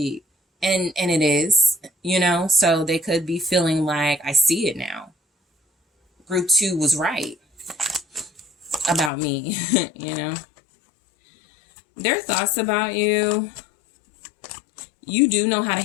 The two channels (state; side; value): drops out; right; at 9.1 s